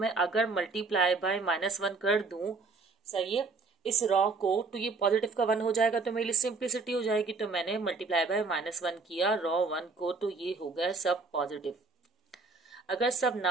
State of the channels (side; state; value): left; quieter; 4.1 dB